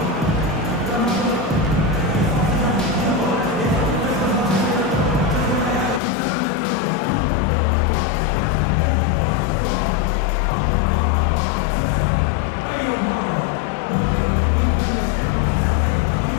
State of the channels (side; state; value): right; drops out; at 6.0 s